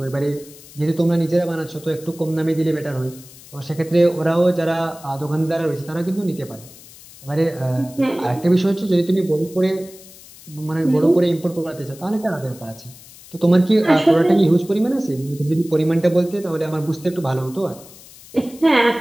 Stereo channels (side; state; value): left; noise; hiss, 20 dB below the sound